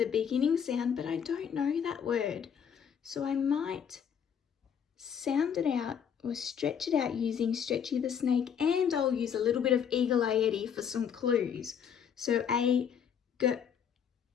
beginning sound, but I don't know that word. So I might sound it out or stretch it out using Stretchy the Snake, and I'll use a little bit of Eagle Eye Eddie for some clues. So a girl.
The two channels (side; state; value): right; quieter; 7.9 dB